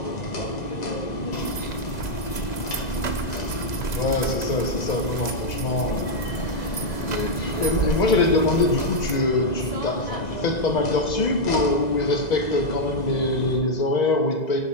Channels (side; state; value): right; late; 2.0 ms